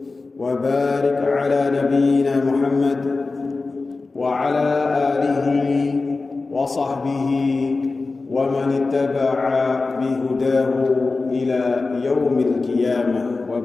وبارك على نبينا محمد وعلى آله وصحبه ومن اتبع بهداه إلى يوم القيامة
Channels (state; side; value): quieter; right; 3.8 dB